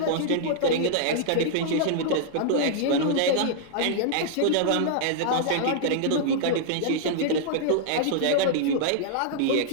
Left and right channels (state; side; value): different; both; correlation -0.01